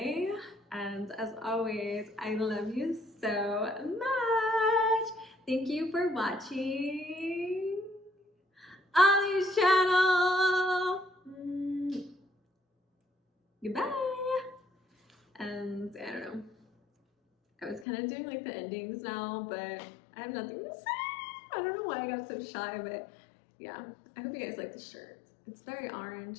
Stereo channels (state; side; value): drops out; right; at 17.9 s